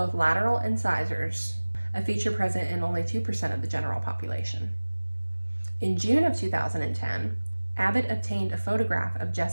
lateral incisors, a feature present in only 2% of the general population. In June of 2010, Abbott obtained a photograph of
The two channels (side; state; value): both; inverted; correlation -1.00